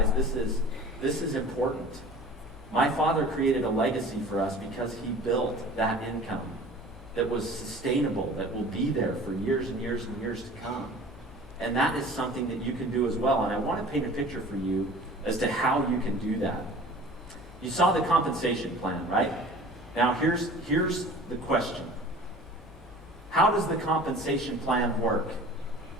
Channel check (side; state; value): both; normal; correlation 0.43